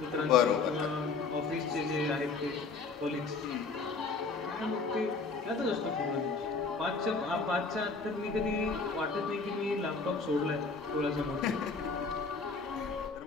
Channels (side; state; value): right; quieter; 4.4 dB